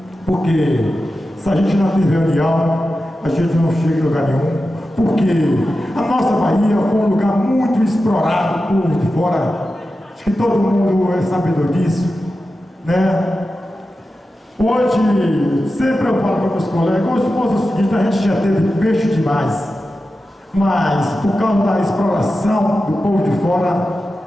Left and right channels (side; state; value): both; normal; correlation 0.92